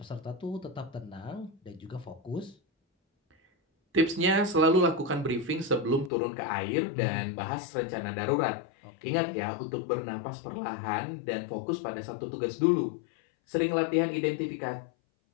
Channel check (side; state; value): right; drops out; at 6.1 s